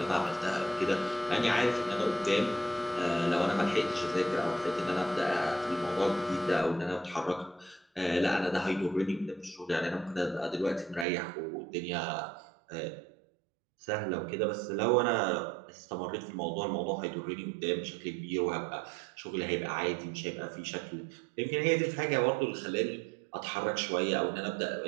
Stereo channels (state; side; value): drops out; left; at 11.1 s